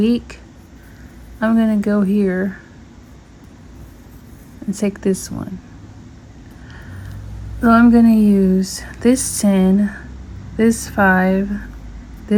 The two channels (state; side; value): identical; both; correlation 1.00